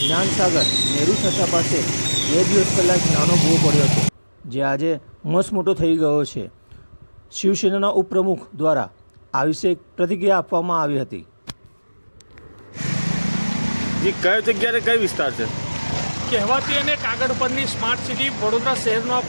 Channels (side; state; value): both; inverted; correlation -1.00